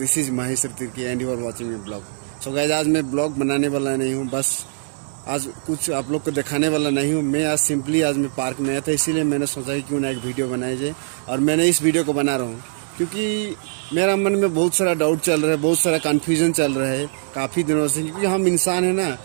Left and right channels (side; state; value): left; silent; digital silence